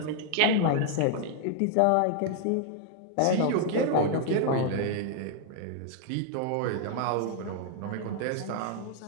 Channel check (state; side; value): different; both; correlation 0.00